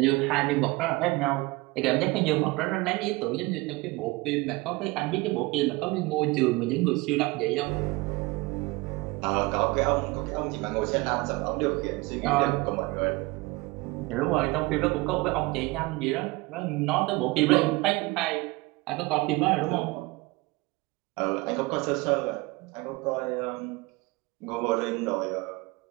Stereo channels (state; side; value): quieter; left; 23.0 dB